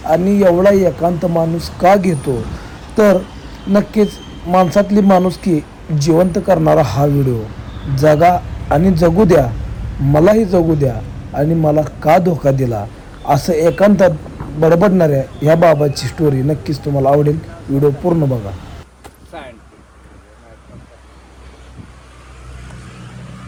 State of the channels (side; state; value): both; identical; correlation 1.00